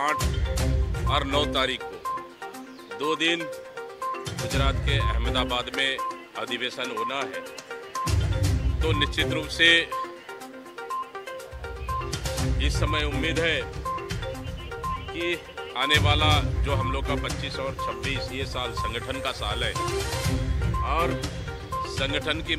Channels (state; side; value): identical; both; correlation 1.00